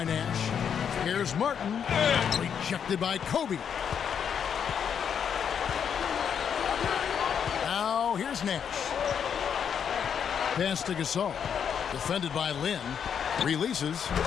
Nash. Here's Martin. Rejected by Kobe. Now here's Nash. Pass to Gasol. Defended by Lynn. Releases.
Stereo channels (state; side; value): quieter; right; 7.7 dB